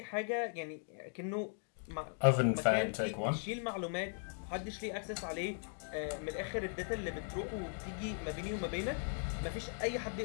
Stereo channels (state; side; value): silent; right; 52 dB below the other